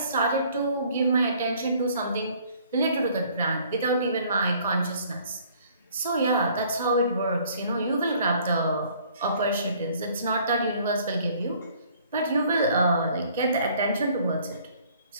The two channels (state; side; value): inverted; both; correlation -0.58